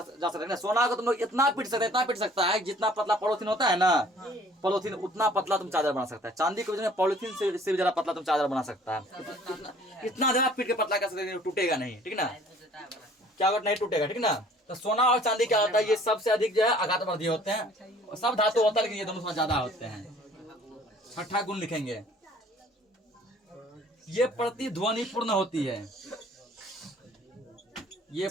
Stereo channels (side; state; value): both; normal; correlation 0.54